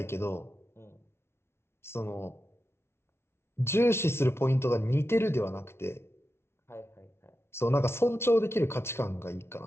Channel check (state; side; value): late; right; 0.12 ms